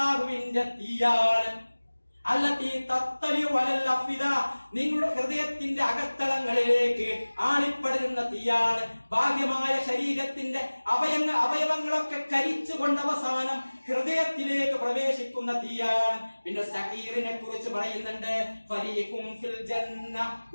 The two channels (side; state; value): both; inverted; correlation -1.00